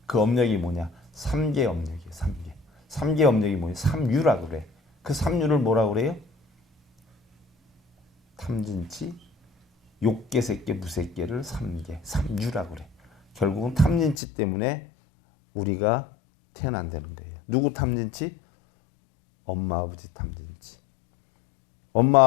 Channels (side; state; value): right; drops out; at 14.2 s